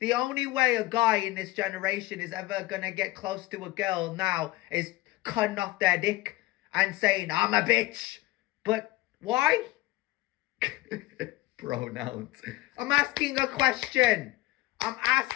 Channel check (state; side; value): quieter; right; 18.9 dB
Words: The only way a guy in this generation is ever going to get close to a girl now is cutting off their dick and saying, I'm a bitch. But why? Pronouns. I'm asking a question. I'm